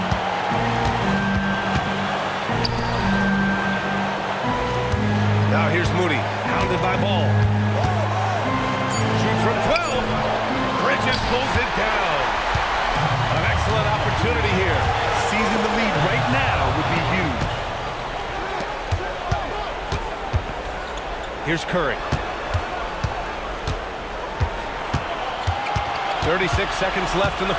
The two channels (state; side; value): identical; both; correlation 1.00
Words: Now here's Moody, hounded by Ball. Shoots from 12. Bridges pulls it down. An excellent opportunity here. Seizing the lead right now would be huge. Here's Curry. 36 seconds left in the